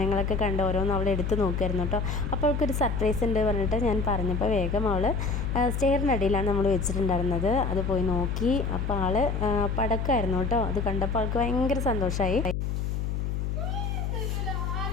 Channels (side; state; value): left; noise; hum, 1 dB below the sound